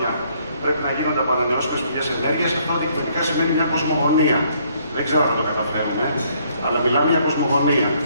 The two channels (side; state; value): both; inverted; correlation -0.67